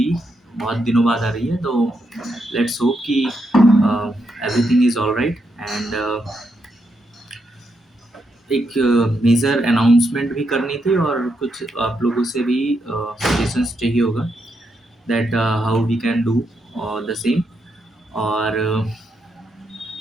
बहुत दिनों बाद आ रही है, तो लेट्स होप कि everything is all right. And एक मेजर अनाउंसमेंट भी करनी थी और कुछ आप लोगों से भी सजेशंस चाहिए होगा that how we can do the same. और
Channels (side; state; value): both; normal; correlation 0.81